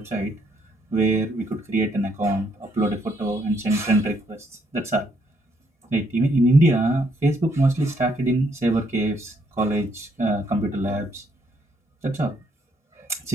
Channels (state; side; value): normal; both; correlation 0.71